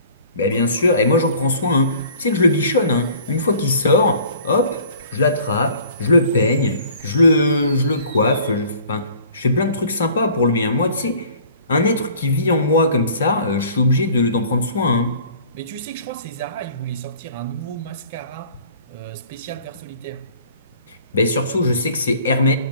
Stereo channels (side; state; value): both; inverted; correlation -0.50